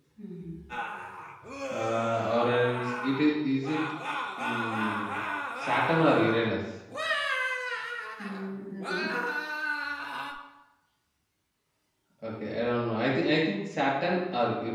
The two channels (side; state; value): both; identical; correlation 1.00